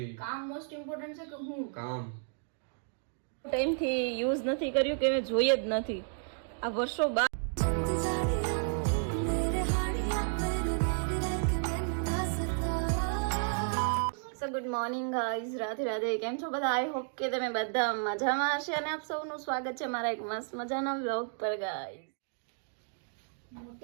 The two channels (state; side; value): silent; left; 56 dB below the other